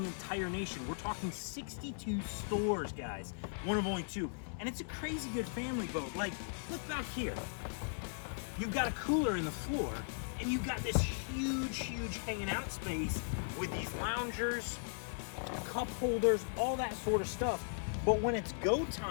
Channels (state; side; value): silent; right; 53 dB below the other